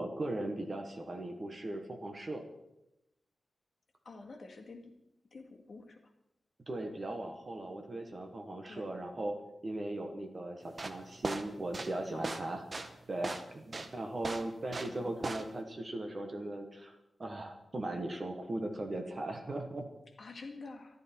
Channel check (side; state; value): both; normal; correlation 0.93